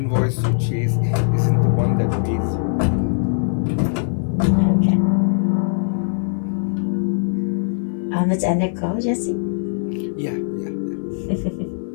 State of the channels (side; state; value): right; silent; digital silence